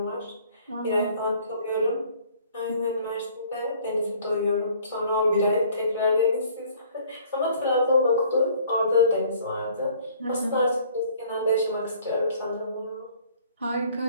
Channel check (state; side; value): inverted; both; correlation -0.56